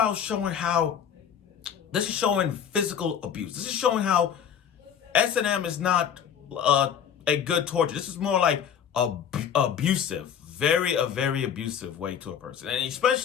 showing this is showing physical abuse. This is showing how S&M is not a good torture. This is more like abusive. A very abusive way to a person. And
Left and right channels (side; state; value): right; quieter; 8.3 dB